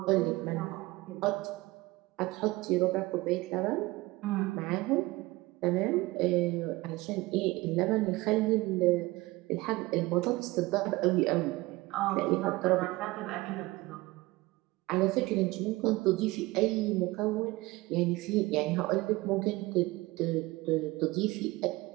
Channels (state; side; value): quieter; left; 20.8 dB